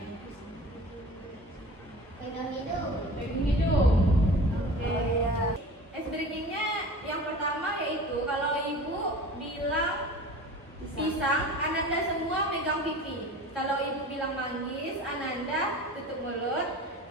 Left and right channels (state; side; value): normal; both; correlation 0.38